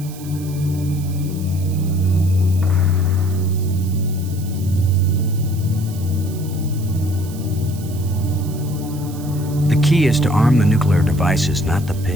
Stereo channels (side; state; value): right; noise; hiss, 18 dB below the sound